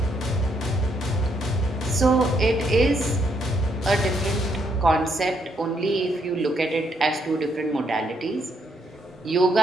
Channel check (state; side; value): normal; both; correlation 0.74